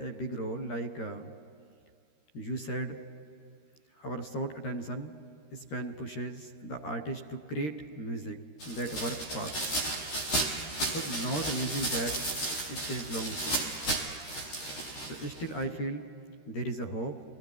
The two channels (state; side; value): late; right; 13 ms